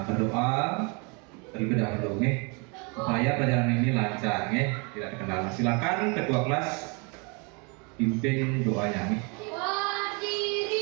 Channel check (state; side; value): quieter; left; 32.5 dB